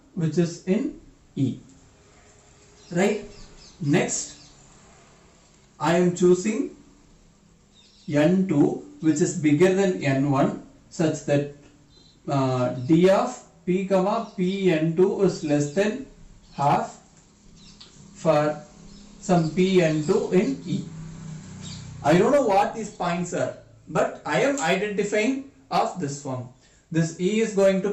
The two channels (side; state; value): both; identical; correlation 1.00